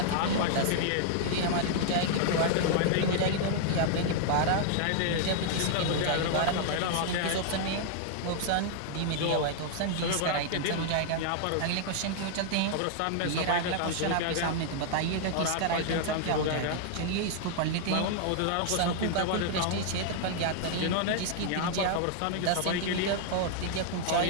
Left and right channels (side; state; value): both; different; correlation -0.01